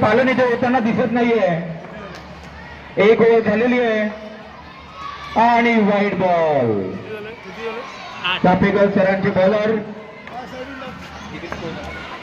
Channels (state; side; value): identical; both; correlation 1.00